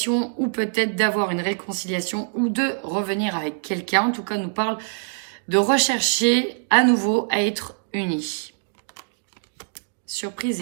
ou peut-être d'avoir une réconciliation ou de revenir avec quelqu'un. En tout cas, on nous parle de rechercher à nouveau à être unis. Surprise,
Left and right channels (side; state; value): left; silent; digital silence